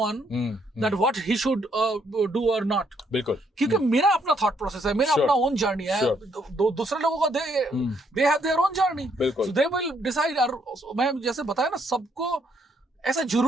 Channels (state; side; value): normal; both; correlation 0.71